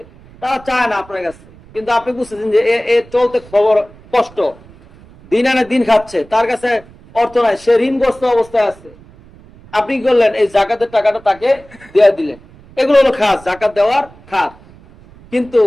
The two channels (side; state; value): right; noise; rumble, 24 dB below the sound